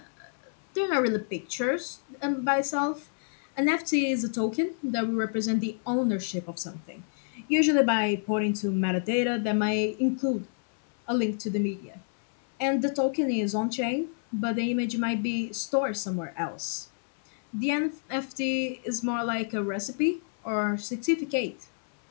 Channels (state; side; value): silent; right; 59 dB below the other